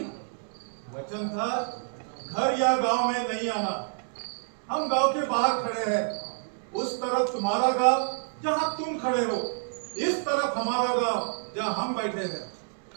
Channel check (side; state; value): left; silent; digital silence